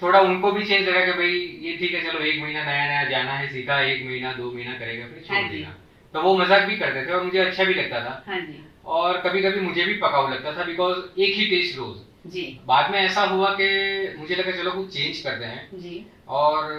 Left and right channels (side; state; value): both; identical; correlation 1.00